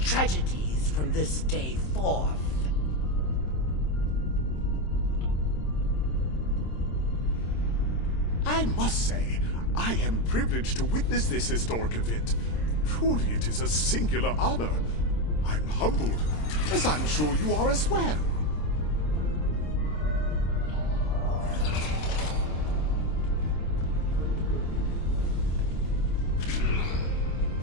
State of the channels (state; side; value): late; right; 26 ms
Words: from this day forth. I must say, I am privileged to witness this historic event. Truly, it is a singular honor. I'm humbled, as I'm sure you are as well.